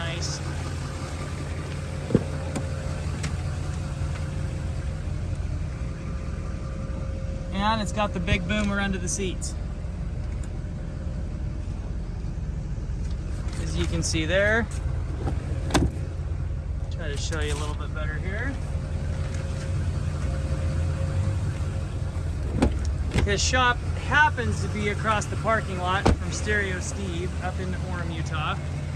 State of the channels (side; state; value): both; identical; correlation 1.00